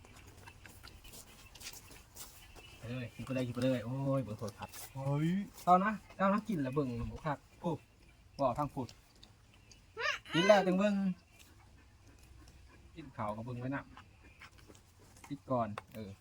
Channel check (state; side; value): identical; both; correlation 1.00